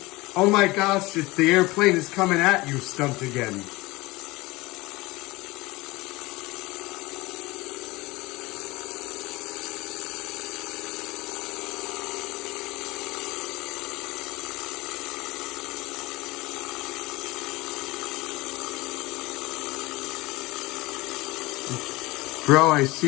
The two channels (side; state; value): right; quieter; 21.6 dB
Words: oh my gosh, the airplane is coming at you stunt again. Bro, I